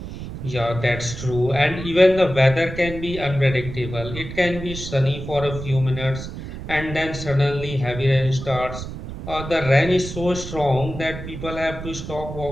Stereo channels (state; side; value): noise; right; rumble, 9 dB below the sound